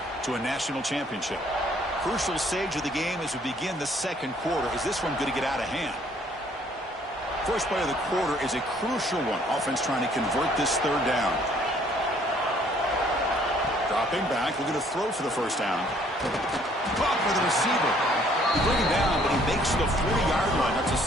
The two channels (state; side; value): normal; both; correlation 0.62